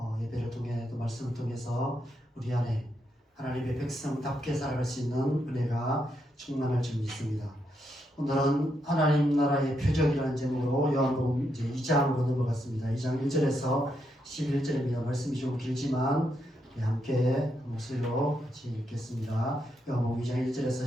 예배를 통해 또 말씀을 통해서 우리 안에 하나님의 백성답게 살아갈 수 있는 은혜가 충만할 줄 믿습니다. 오늘은 하나님 나라의 표적이라는 제목으로 요한복음 이제 2장으로 넘어갔습니다. 2장 1절에서 11절입니다. 말씀이 좀 길지만 함께 목소리로 같이 읽겠습니다. 요한복음 2장 1절에서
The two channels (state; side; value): normal; both; correlation 0.80